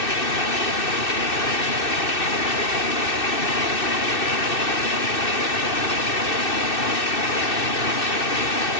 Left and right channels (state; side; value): late; right; 2.6 ms